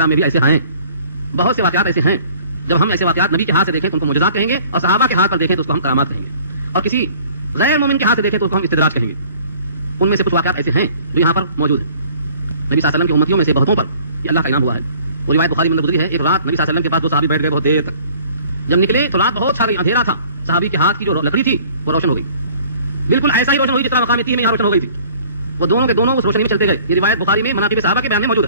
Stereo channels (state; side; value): inverted; both; correlation -0.52